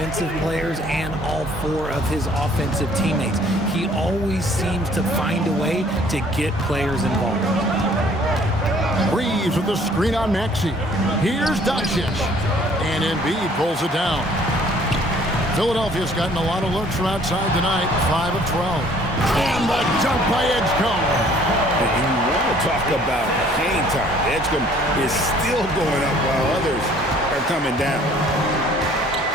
players and all 4 of his offensive teammates. He always seems to find a way to get players involved. Reeves with the screen on Maxey. Here's Doncic. And Embiid pulls it down. Philadelphia's gotten a lot of looks from outside tonight. 5 of 12. And the dunk by Edgecombe. And you want to talk about hang time. Edgecombe is still going up while others are coming down.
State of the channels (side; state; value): both; normal; correlation 0.57